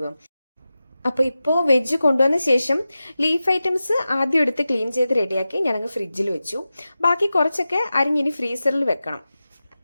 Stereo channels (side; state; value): both; inverted; correlation -0.94